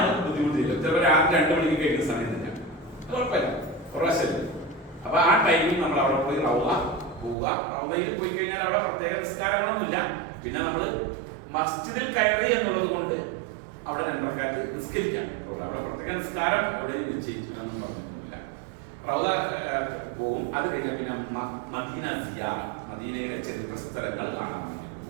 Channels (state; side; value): drops out; left; at 7.4 s